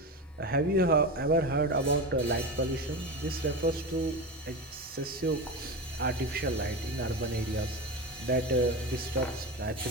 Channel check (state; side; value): normal; both; correlation 0.22